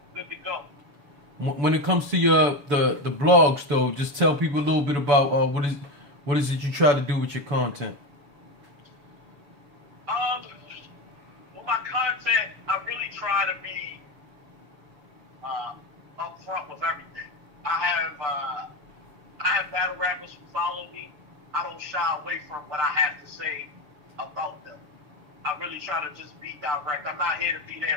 Good to go. When it comes to the blogs, though, just tell people a little bit about what is it you try to do with your content. With my content, I really try to be upfront with everything. I have battle rappers who follow me. I don't shy away from what I have to say about them. I really try to just be direct. I'm not here to be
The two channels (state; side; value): late; left; 7.0 ms